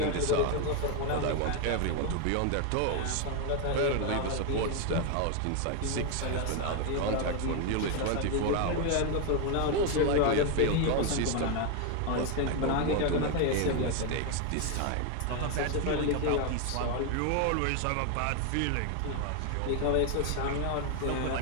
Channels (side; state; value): both; different; correlation 0.01